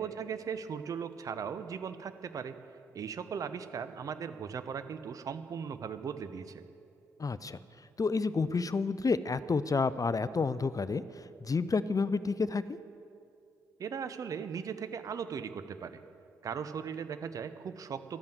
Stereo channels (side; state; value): both; normal; correlation 0.74